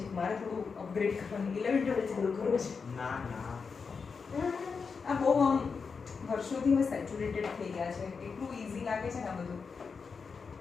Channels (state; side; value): quieter; right; 5.3 dB